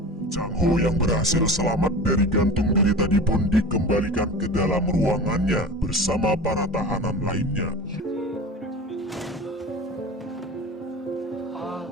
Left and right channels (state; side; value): normal; both; correlation 0.34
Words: Chang Ho yang berhasil selamat dari gantung diri tadi pun dikembalikan ke dalam ruangannya bersama para tahanan lainnya.